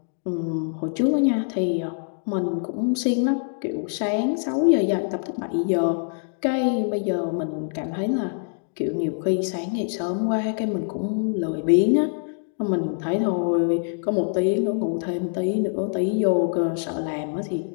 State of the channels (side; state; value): right; silent; digital silence